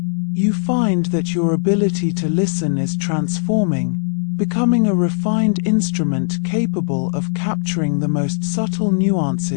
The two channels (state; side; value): silent; right; digital silence